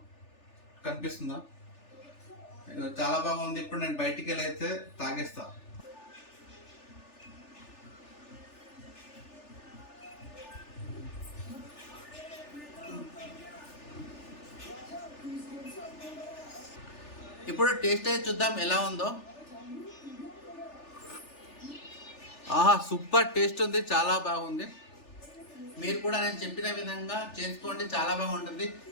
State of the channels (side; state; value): right; late; 3.4 ms